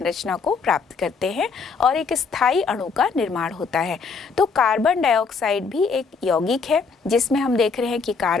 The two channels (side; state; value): right; quieter; 5.0 dB